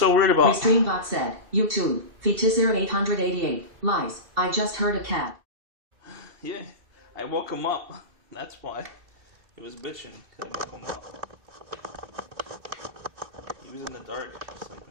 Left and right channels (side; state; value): left; late; 2.7 ms